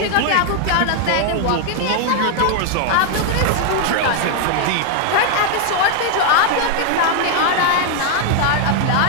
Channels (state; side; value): different; both; correlation 0.00